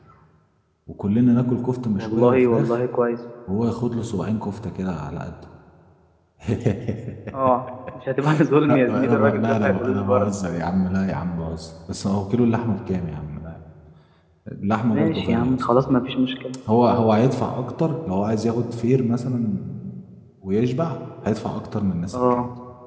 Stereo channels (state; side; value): identical; both; correlation 1.00